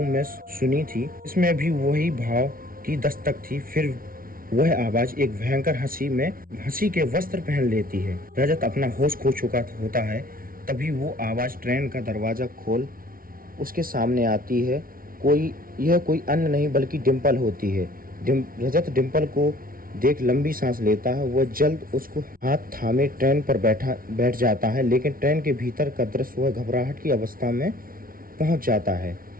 में सुनी थी। इसमें भी वही भाव की दस्तक थी। फिर वह आवाज एक भयंकर हंसी के वस्त्र पहन लेती है। रजत अपना होश खो चुका होता है। तभी वो आवाज ट्रेन का दरवाजा खोल उसके सामने आती है। यह कोई अन्य नहीं बल्कि डिम्पल होती है। रजत डिम्पल को देख लंबी सांस लेता है। वह जल्द उसको हाथ थामे ट्रेन पर बैठ जाता है, लेकिन ट्रेन के भीतर का दृश्य वह घबराहट की अवस्था में पहुंच जाता है।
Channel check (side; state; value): left; late; 0.42 ms